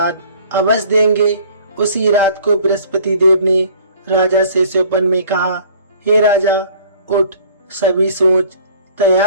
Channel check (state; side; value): inverted; both; correlation -0.52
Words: अवश्य देंगे। उसी रात को बृहस्पति देव ने राजा से स्वप्न में कहा, हे राजा, उठ, सभी सोच